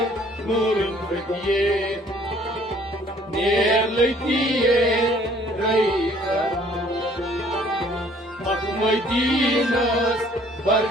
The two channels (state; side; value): normal; both; correlation 0.58